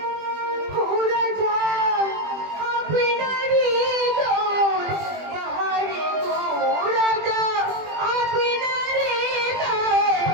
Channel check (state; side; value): late; left; 20 ms